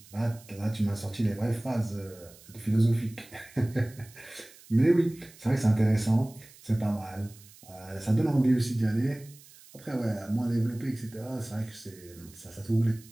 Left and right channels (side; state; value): right; noise; hiss, 23 dB below the sound